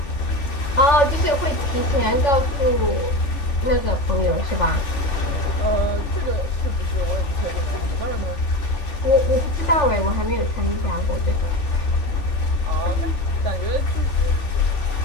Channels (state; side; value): late; right; 3.5 ms